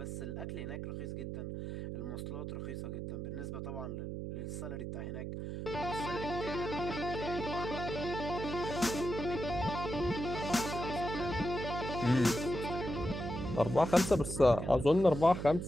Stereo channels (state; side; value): noise; right; hum, 5 dB below the sound